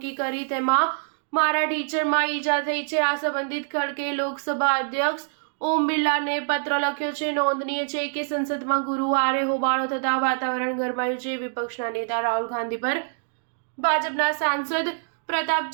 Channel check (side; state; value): left; silent; digital silence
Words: કરી, તેમાં મારા ટીચરમાં ઈજા થઈ છે. આ સંબંધિત ખડગેએ લોકસભા અધ્યક્ષ ઓમ બિરલાને પત્ર લખ્યો છે. નોંધનીય છે કે સંસદમાં ગુરુવારે હોબાળો થતાં વાતાવરણ ગરમાયું છે. વિપક્ષના નેતા રાહુલ ગાંધી પર ભાજપના સાંસદ